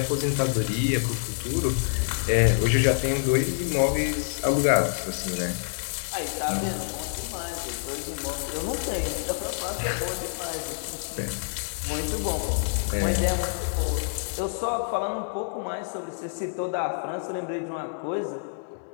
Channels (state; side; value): silent; right; digital silence